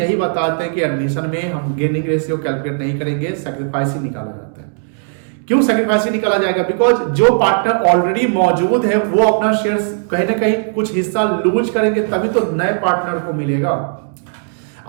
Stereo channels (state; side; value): silent; left; digital silence